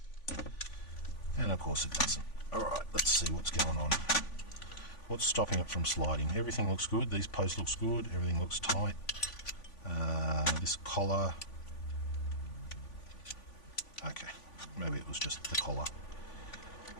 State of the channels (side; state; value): right; late; 3.5 ms